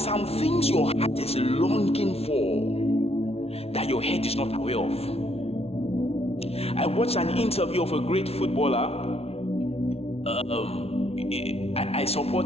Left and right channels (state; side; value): late; right; 0.30 ms